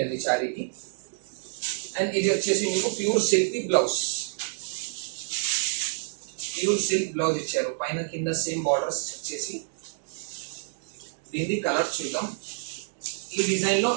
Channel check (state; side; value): silent; left; 60 dB below the other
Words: అండి సారీకి. అండ్ ఇది వచ్చేసి మీకు pure silk blouse, pure silk blouse ఇచ్చారు, పైన కింద సేమ్ బార్డర్స్ వచ్చేసి. దీని కలర్ చూద్దాం. ఈ డిజైన్ లో